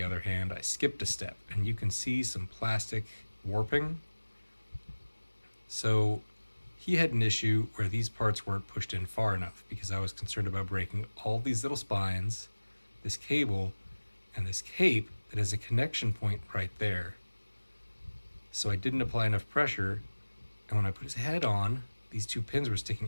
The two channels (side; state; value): both; inverted; correlation -1.00